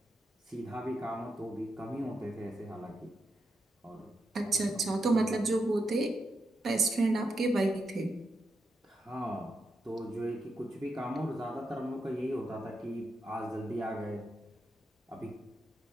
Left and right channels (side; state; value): both; normal; correlation 0.85